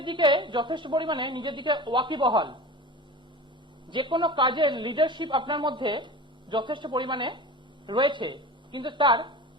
দিকে যথেষ্ট পরিমাণে নিজের দিকে ওয়াকিবহাল, যে কোনো কাজের লিডারশিপ আপনার মধ্যে যথেষ্ট পরিমাণে রয়েছে, কিন্তু তার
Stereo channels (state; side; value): normal; both; correlation 0.33